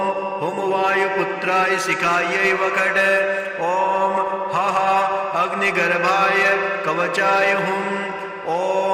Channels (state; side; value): identical; both; correlation 1.00